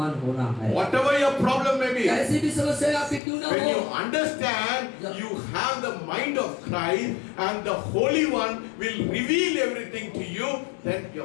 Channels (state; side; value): drops out; right; at 3.2 s